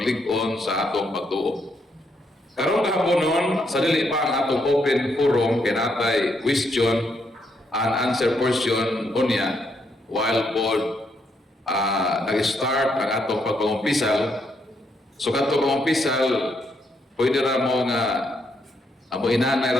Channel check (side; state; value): both; normal; correlation 0.76